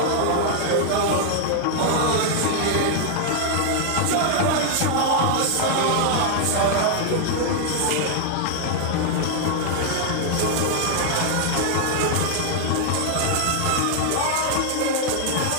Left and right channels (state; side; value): different; both; correlation 0.00